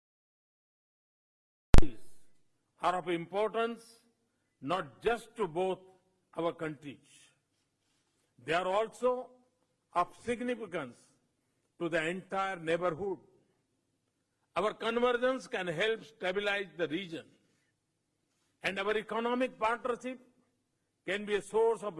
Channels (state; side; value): identical; both; correlation 1.00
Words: are of importance not just to both our countries. They are also of significance to the entire neighborhood. Our convergence can help stabilize the region, and our economic partnership can be a source of